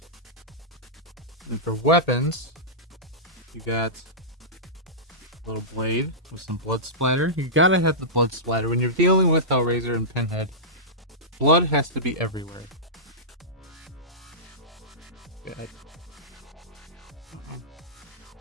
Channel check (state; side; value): normal; both; correlation -0.16